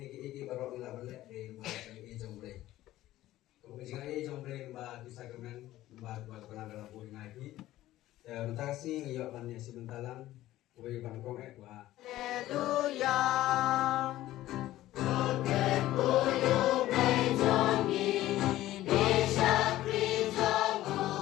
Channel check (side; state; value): right; quieter; 15.1 dB